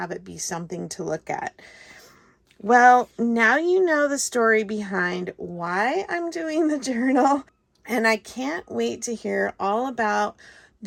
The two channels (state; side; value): identical; both; correlation 1.00